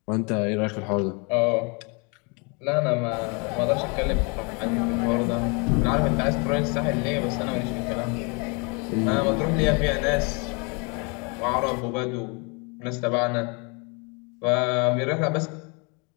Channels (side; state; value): right; quieter; 32.6 dB